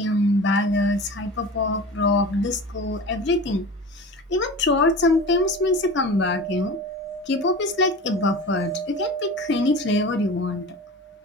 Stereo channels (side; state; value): both; normal; correlation 0.35